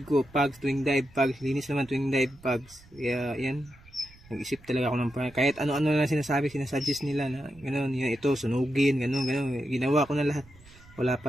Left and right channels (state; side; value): noise; right; rumble, 25 dB below the sound